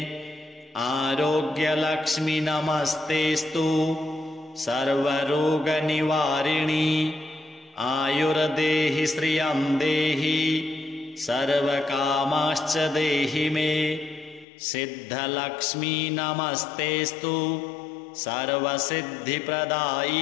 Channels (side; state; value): right; drops out; at 14.5 s